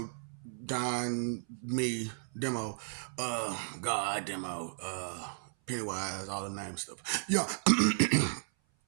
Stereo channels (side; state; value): left; silent; 55 dB below the other